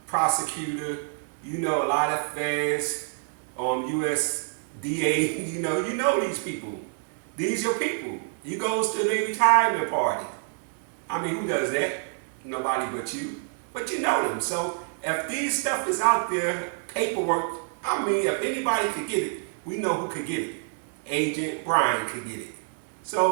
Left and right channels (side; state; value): left; silent; 60 dB below the other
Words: prosecutor, you know a lot of feds, USDA, you know these people. These your people. You goes to their retirement party. I mean, who does that? Nobody but you. But you know them. So if these stuff is out there, paperwork, I mean, if anybody could get it, we know who could get it. Agent Brian could get it.